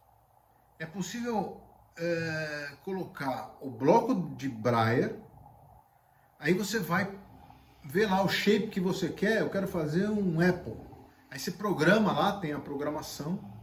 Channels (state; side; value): identical; both; correlation 1.00